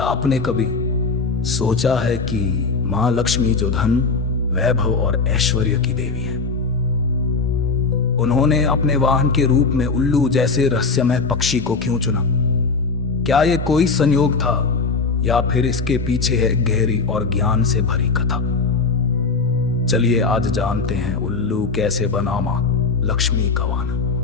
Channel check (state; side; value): quieter; right; 4.4 dB